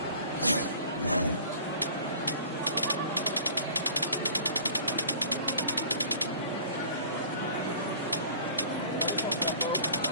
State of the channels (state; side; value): inverted; both; correlation -0.46